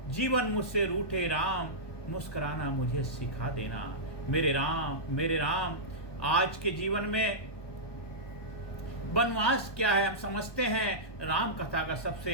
जीवन मुझसे रूठे राम, मुस्कुराना मुझे सिखा देना। मेरे राम, मेरे राम, आज के जीवन में वनवास क्या है हम समझते हैं, राम कथा का सबसे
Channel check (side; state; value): right; late; 1.2 ms